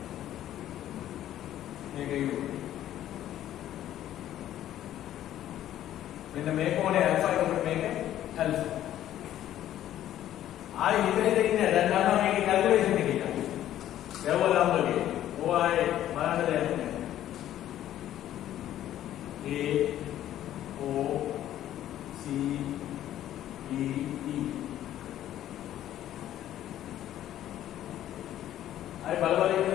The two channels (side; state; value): right; quieter; 12.3 dB